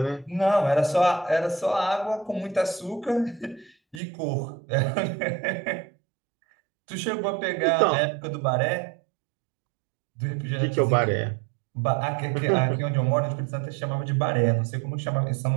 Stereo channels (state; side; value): drops out; left; at 4.0 s